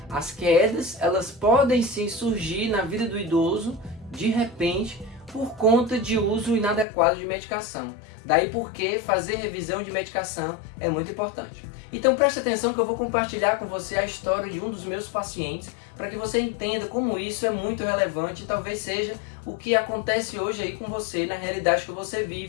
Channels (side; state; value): right; drops out; at 6.9 s